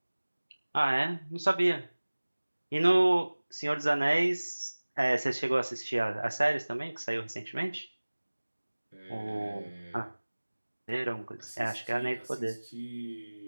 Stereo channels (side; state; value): both; inverted; correlation -1.00